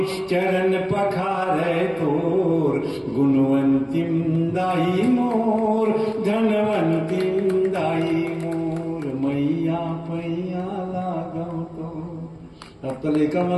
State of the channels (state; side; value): identical; both; correlation 1.00